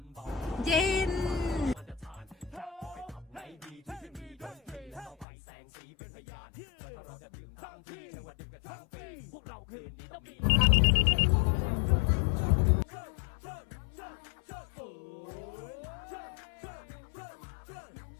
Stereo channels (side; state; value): right; drops out; at 5.2 s